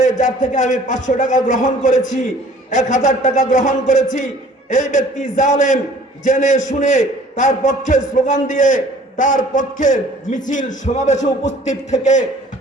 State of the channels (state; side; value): normal; both; correlation 0.51